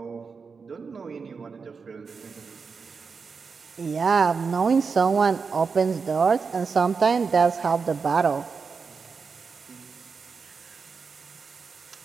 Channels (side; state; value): left; quieter; 5.2 dB